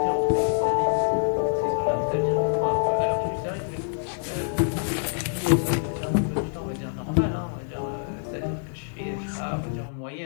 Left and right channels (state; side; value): silent; right; 58 dB below the other